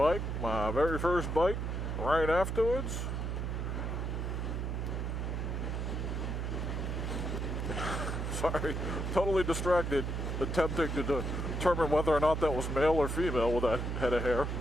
my very first bike, right afterwards. Sorry, totally distracted, attempting to determine whether or not that was male or female with that head of hair.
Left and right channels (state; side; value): noise; right; hum, 2 dB below the sound